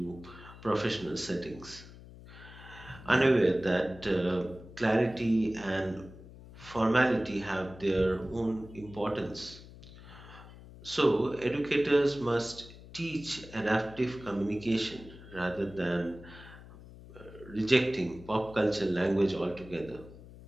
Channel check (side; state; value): left; noise; hum, 18 dB below the sound